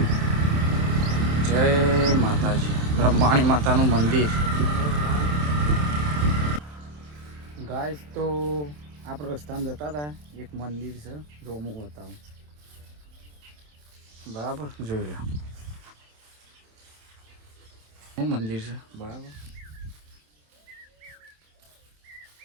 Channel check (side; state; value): left; late; 27 ms